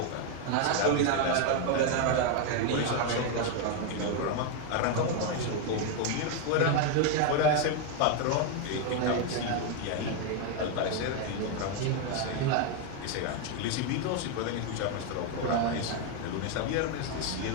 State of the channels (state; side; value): different; both; correlation 0.01